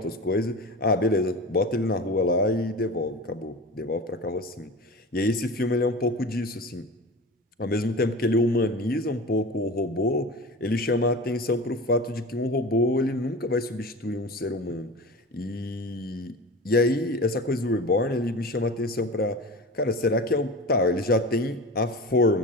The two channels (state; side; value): normal; both; correlation 0.32